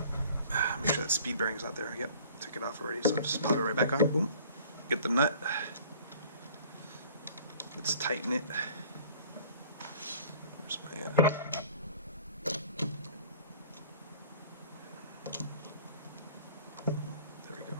Make sure that speed bearing's out there. Yep, took it off already, so just pop it right back on. Boom. Get the nut. Let's tighten it. Where's my...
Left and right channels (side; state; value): both; inverted; correlation -0.50